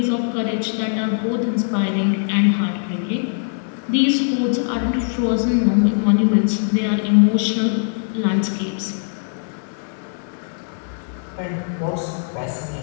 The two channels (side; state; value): right; silent; 65 dB below the other